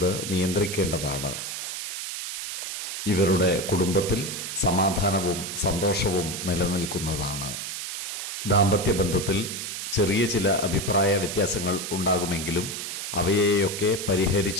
നിയന്ത്രിക്കേണ്ടതാണ്. ഇവരുടെ കുടുംബത്തിൽ സമാധാനവും സന്തോഷവും നിലനിൽക്കുന്നതാണ്. ദാമ്പത്യ ബന്ധത്തിൽ ചെറിയ ചില അഭിപ്രായ വ്യത്യാസങ്ങൾ ഉണ്ടാകുമെങ്കിലും അവയെയൊക്കെ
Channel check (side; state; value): right; noise; hiss, 5 dB below the sound